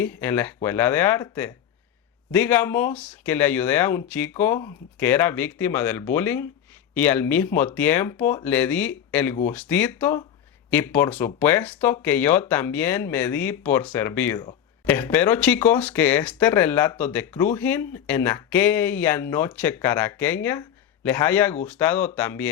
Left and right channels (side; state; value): right; quieter; 9.6 dB